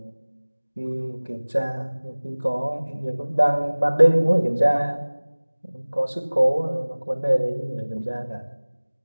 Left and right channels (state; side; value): inverted; both; correlation -1.00